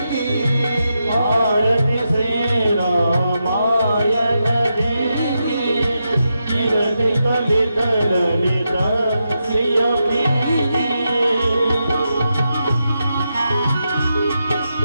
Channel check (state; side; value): inverted; both; correlation -0.86